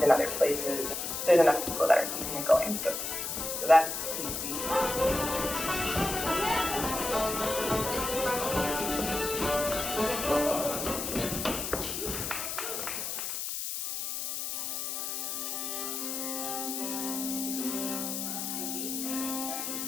in other places. There's enough people that are keeping it going, so that's easy.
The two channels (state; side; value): noise; left; hiss, 3 dB below the sound